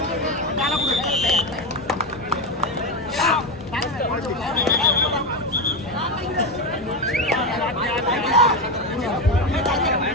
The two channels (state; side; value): normal; both; correlation 0.13